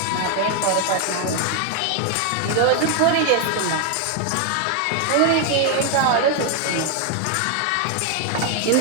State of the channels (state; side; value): different; both; correlation 0.01